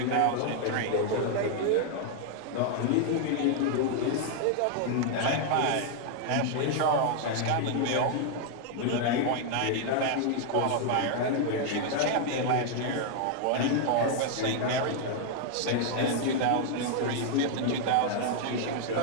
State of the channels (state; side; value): different; both; correlation 0.00